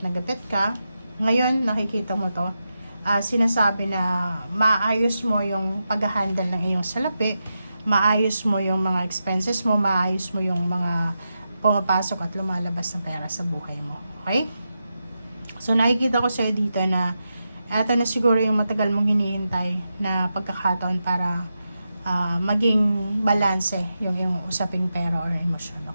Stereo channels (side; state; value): both; inverted; correlation -0.88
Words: na gipit ka, ngayon, nakikita mo to, sinasabi na maayos mo yung pag-handle ng iyong salapi, maayos mo yung mga expenses mo, maayos mo yung mga pumapasok at lumalabas na pera sa buhay mo. Okay? So, nakikita ko sa'yo dito na ito na siguro yung matagal mong hinihintay na pagkakataon para maging balanse yung usaping pera or emosyon.